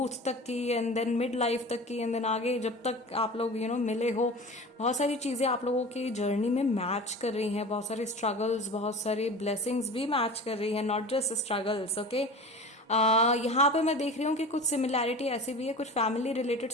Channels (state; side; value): normal; both; correlation 0.35